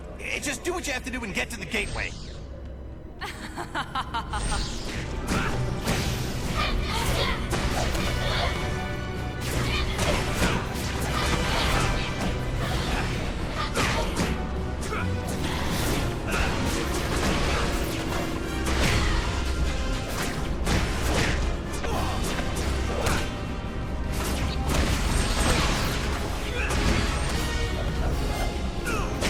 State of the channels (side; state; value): both; identical; correlation 1.00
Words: Just do what you have to do and get to the gateway.